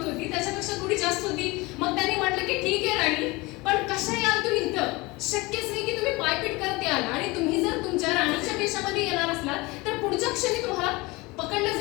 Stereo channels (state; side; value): quieter; right; 23.2 dB